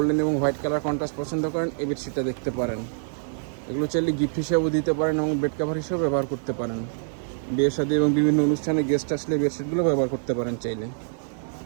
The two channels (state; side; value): silent; left; 61 dB below the other